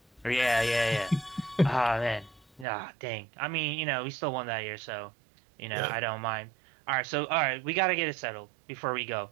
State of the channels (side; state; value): left; drops out; at 2.7 s